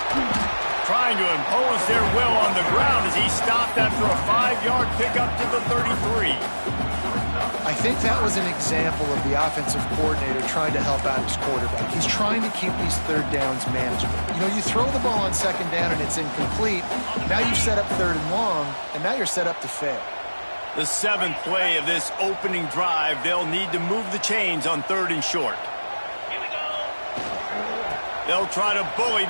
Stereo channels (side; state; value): both; inverted; correlation -1.00